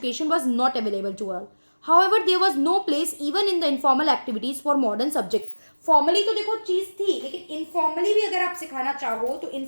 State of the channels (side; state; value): both; inverted; correlation -1.00